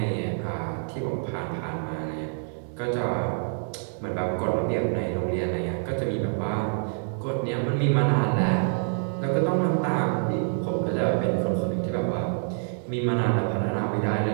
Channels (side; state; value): left; silent; digital silence